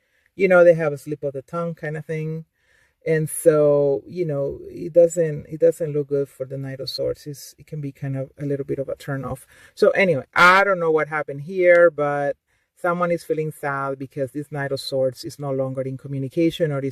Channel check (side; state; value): both; identical; correlation 1.00